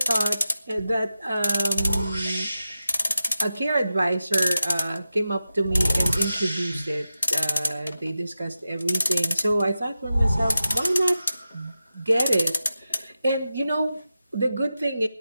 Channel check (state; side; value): inverted; both; correlation -0.91